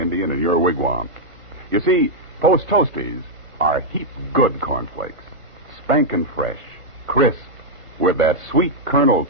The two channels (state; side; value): late; left; 1.5 ms